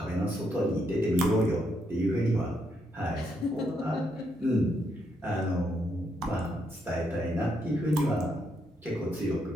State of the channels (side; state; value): both; normal; correlation 0.77